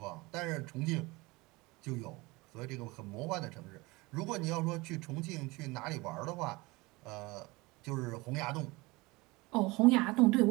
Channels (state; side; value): quieter; left; 23.2 dB